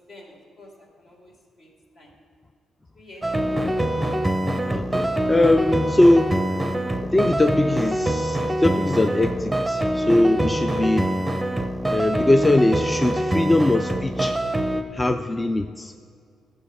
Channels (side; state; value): both; normal; correlation 0.95